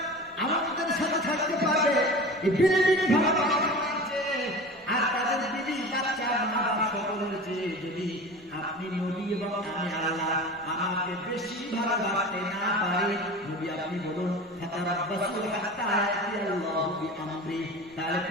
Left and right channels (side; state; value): both; normal; correlation 0.35